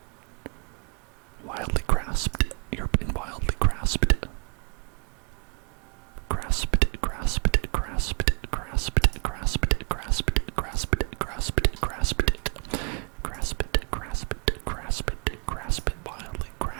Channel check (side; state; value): left; quieter; 33.0 dB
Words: Wildly grasped. You're being wildly grasped. Grasp it, grasp it, grasp it, grasp it, grasp it, grasp it, grasp it, grasp it, grasp it, grasp it, grasp it, grasp it, grasp it, wildly